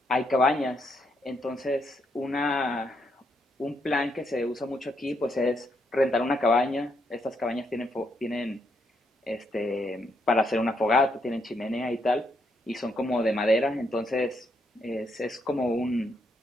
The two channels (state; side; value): normal; both; correlation 0.77